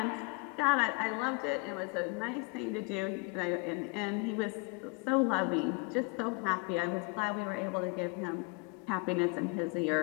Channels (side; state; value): right; quieter; 31.4 dB